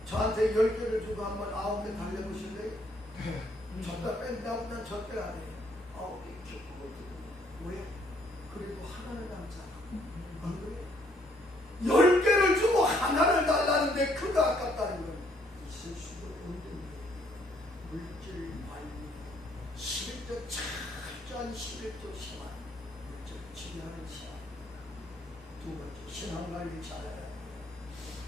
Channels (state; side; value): normal; both; correlation 0.68